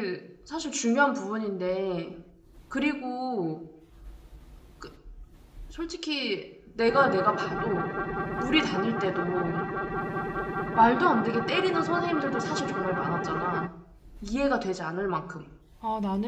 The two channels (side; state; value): both; identical; correlation 1.00